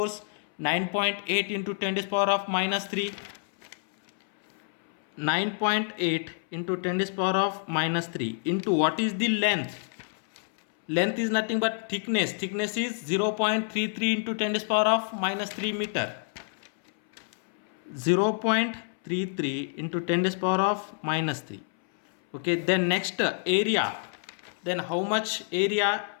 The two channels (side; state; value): right; silent; 59 dB below the other